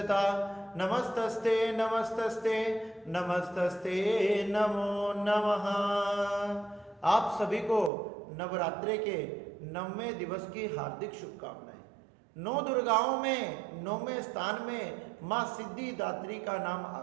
नमस्तस्ते नमस्तस्ते नमस्तस्ते नमो नमः। आप सभी को नवरात्रे के 9वें दिवस की हार्दिक शुभकामनाएं। 9 दुर्गाओं में 9वें स्थान में मां सिद्धिदात्री का नाम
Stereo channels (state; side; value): drops out; left; at 7.9 s